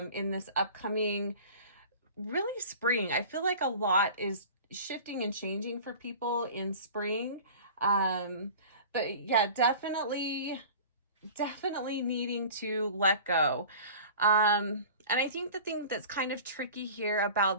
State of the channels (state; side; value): inverted; both; correlation -0.40